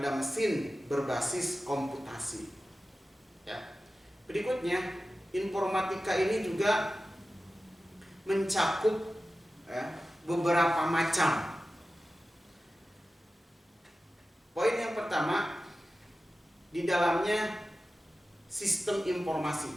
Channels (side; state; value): both; normal; correlation 0.94